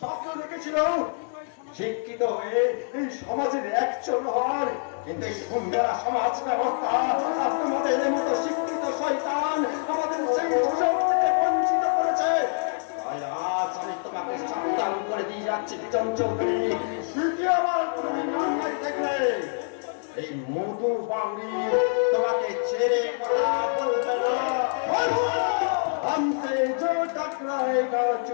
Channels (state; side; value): silent; right; digital silence